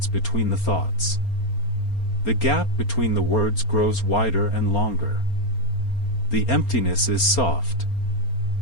between the thoughts. The gap between the words grows wider and longer. The emptiness is soft.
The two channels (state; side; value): late; right; 4.3 ms